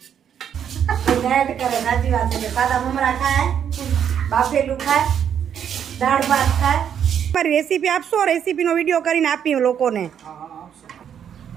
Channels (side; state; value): left; quieter; 8.7 dB